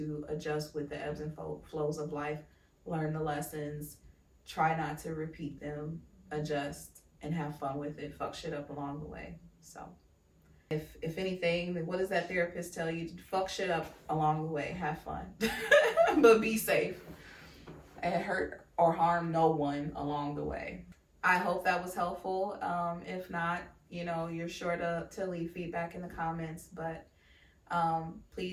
adjust with the ebbs and flows of life, learn the lessons, try not to repeat them, adjust, and have fun with it. Fuck shit up along the way. So if anything, what does that therapist tell you? Fuck shit up along the way, have fun, but be safe and hurt or harm no one along the way. I hope that was helpful. If not, you're sure to leave feedback in the comments, but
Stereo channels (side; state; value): both; identical; correlation 1.00